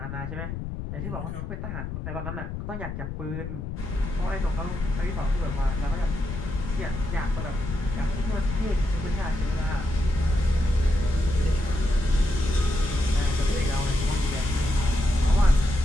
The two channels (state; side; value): noise; left; rumble, 6 dB below the sound